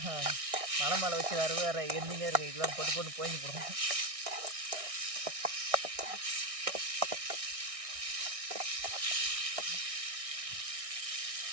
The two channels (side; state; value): left; late; 1.6 ms